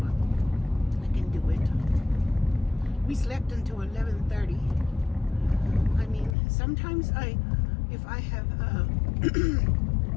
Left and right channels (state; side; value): drops out; right; at 6.4 s